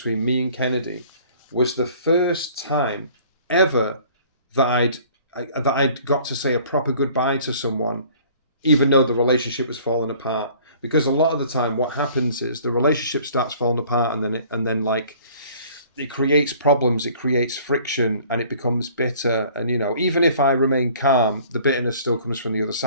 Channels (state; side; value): inverted; both; correlation -0.53